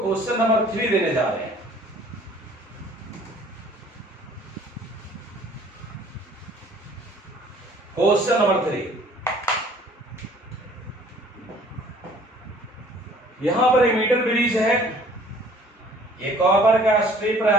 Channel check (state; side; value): normal; both; correlation 0.54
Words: नंबर 3 देने जा रहे हैं। क्वेश्चन नंबर 3, यहां पर एक मीटर ब्रिज है। ये कॉपर का स्ट्रिप